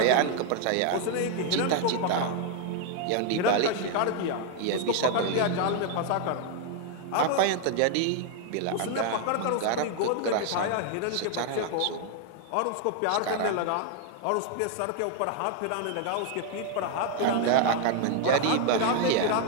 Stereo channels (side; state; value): both; different; correlation 0.00